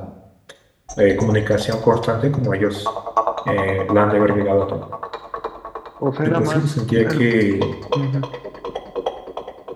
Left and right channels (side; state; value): both; identical; correlation 1.00